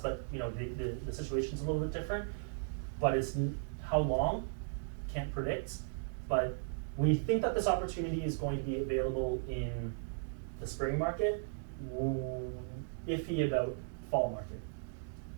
you know, the situation's a little bit different. But it's, how long, can't predict, but we think that this opportunity is going to be available in the spring market, iffy about fall market,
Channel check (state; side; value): silent; left; digital silence